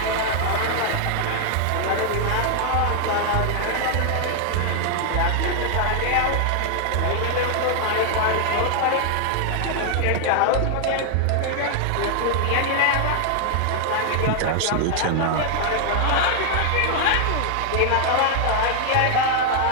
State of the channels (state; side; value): different; both; correlation 0.00